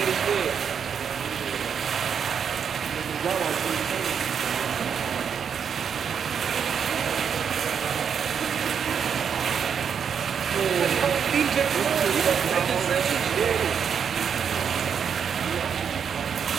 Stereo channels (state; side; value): quieter; left; 7.3 dB